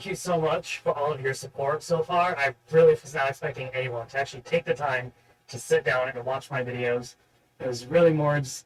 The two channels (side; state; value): both; identical; correlation 1.00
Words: you so much for all of your support so far. I really was not expecting anyone to actually take the time to sit down and watch my videos. It was really more